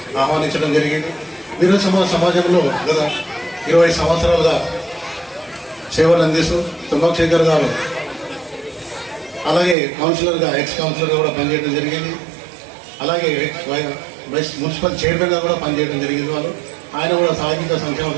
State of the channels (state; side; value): drops out; left; at 9.8 s